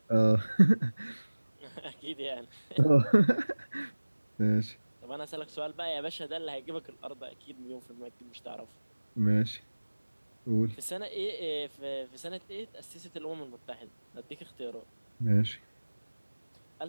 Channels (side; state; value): both; inverted; correlation -1.00